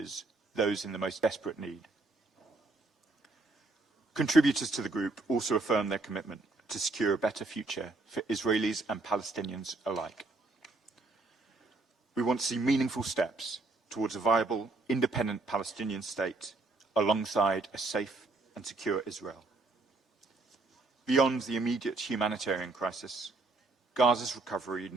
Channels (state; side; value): quieter; left; 3.3 dB